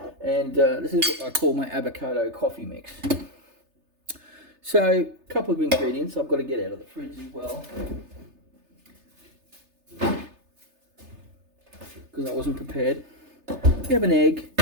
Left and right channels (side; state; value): left; late; 3.3 ms